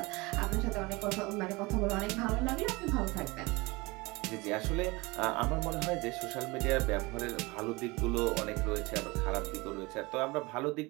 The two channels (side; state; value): left; quieter; 24.0 dB